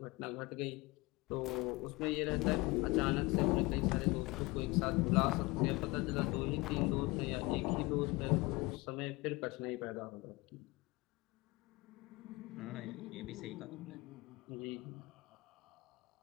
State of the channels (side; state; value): right; quieter; 23.3 dB